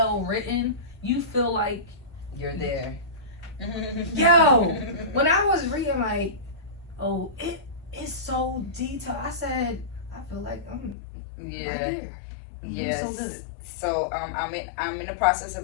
written. You feel like you're there. Yo, when I was reading, it's so detailed. I said, I feel like I'm right there. Yes. So good. So I'm in the process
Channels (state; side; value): drops out; right; at 11.0 s